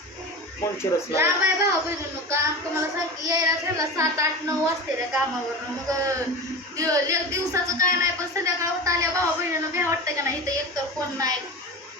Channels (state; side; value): normal; both; correlation 0.29